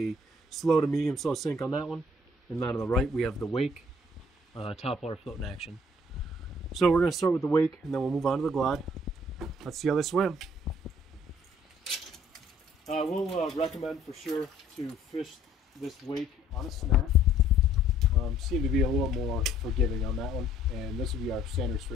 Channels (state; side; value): normal; both; correlation 0.60